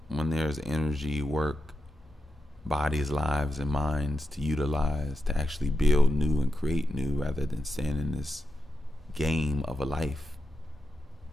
When there's energy, work, bodies, lives, and minds to utilize to actually build new and create new, rather than stand in this game of a life.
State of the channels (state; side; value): normal; both; correlation 0.88